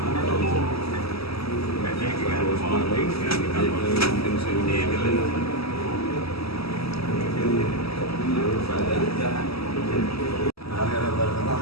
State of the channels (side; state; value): right; late; 0.76 ms